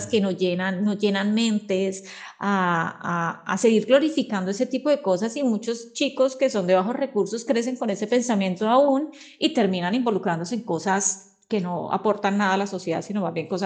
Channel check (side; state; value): both; identical; correlation 1.00